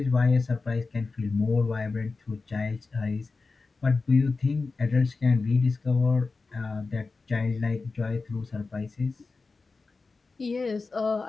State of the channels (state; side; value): quieter; right; 4.0 dB